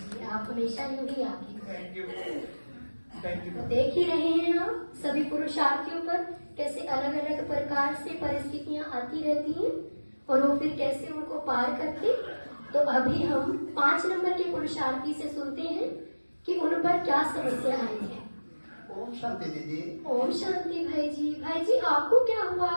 आप हमेशा यूं ही आगे। Thank you, thank you. देख ही रहे हैं आप सभी पुरुषार्थियों पर कैसे अलग अलग प्रकार से परिस्थितियां आती रहती हैं और वो फिर कैसे उनको पार करते। तो अभी हम 5 नंबर के पुरुषार्थी से सुनते हैं कि उन पर क्या समस्या आई है। ओम शांति दीदी। ओम शांति भाई जी। भाई जी, आपको क्या हुआ?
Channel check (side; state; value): both; inverted; correlation -1.00